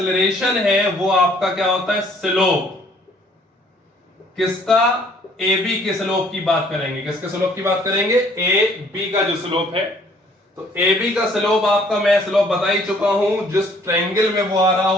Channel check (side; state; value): both; normal; correlation 0.60